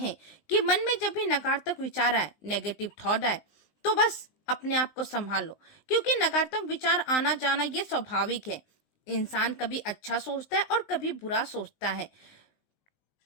कि मन में जब भी नकारात्मक विचार आए, नेगेटिव थॉट आए, तो बस अपने आप को संभाल लो, क्योंकि नकारात्मक विचार आना जाना ये स्वाभाविक है। इंसान कभी अच्छा सोचता है और कभी बुरा सोचता है।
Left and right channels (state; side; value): late; right; 19 ms